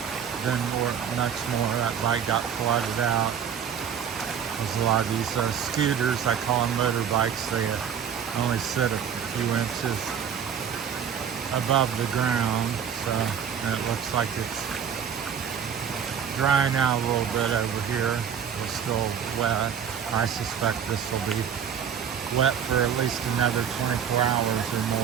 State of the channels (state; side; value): quieter; left; 8.0 dB